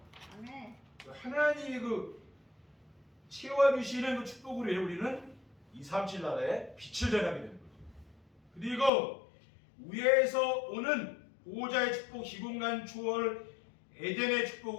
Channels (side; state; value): right; drops out; at 8.9 s